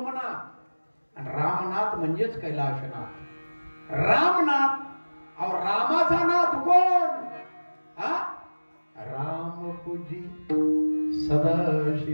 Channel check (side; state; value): both; inverted; correlation -1.00